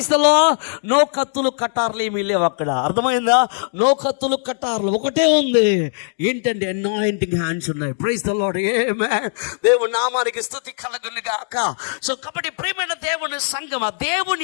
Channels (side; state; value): right; silent; digital silence